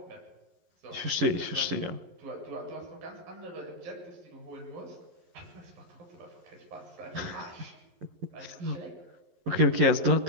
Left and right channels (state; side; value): late; left; 11 ms